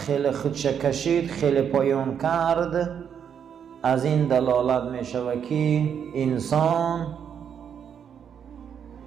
خودش کشید، خیلی پایان کرد، از این دلالت میشود که انسان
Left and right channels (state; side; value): quieter; left; 8.0 dB